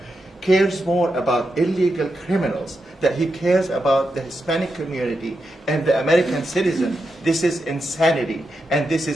cares more about illegal criminals than he cares about the Hispanic community and the American citizen, this is insanity, and this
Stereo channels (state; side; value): normal; both; correlation 0.87